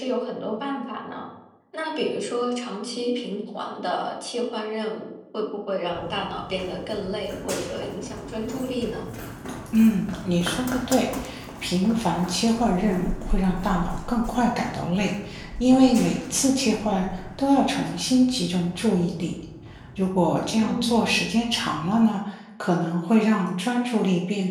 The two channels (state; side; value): identical; both; correlation 1.00